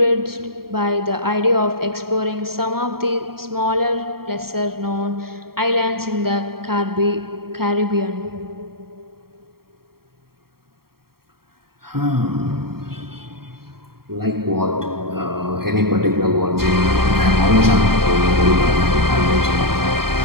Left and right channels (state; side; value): late; left; 0.94 ms